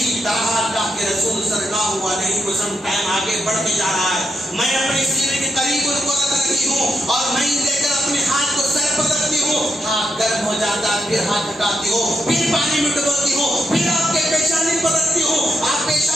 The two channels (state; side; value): normal; both; correlation 0.82